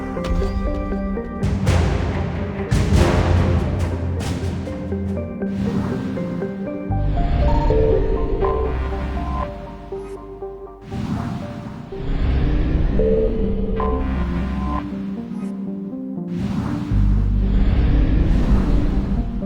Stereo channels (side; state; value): both; identical; correlation 1.00